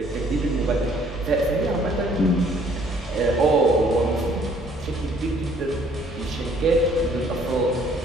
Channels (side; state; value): both; normal; correlation 0.61